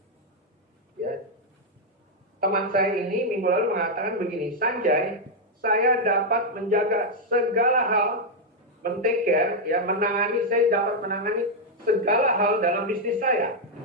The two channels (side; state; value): both; normal; correlation -0.01